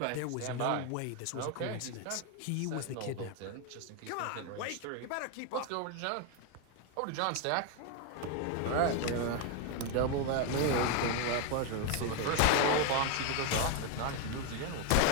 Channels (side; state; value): both; different; correlation 0.01